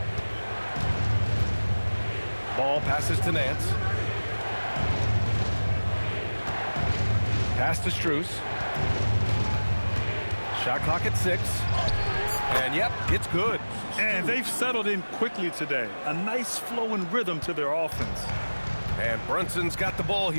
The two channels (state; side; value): inverted; both; correlation -1.00